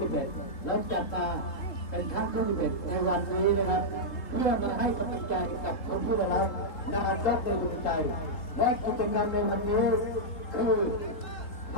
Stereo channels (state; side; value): late; right; 3.7 ms